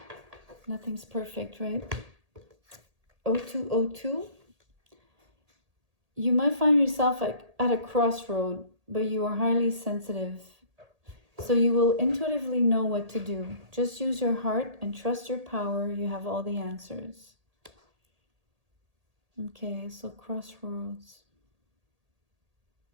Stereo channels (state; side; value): late; left; 1.8 ms